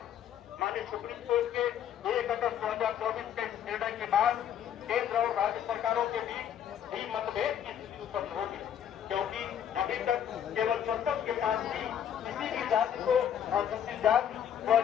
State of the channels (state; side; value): quieter; right; 9.5 dB